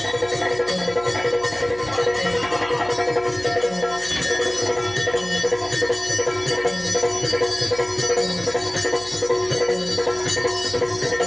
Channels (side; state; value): left; noise; hum, 20 dB below the sound